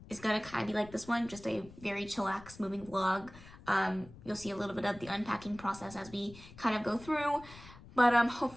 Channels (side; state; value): left; noise; rumble, 19 dB below the sound